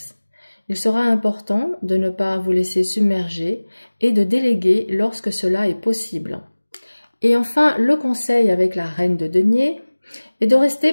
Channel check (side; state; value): both; inverted; correlation -1.00